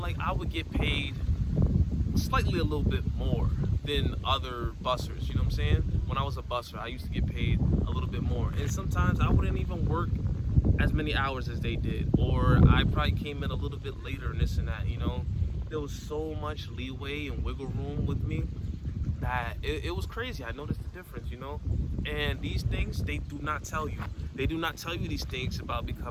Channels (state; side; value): identical; both; correlation 1.00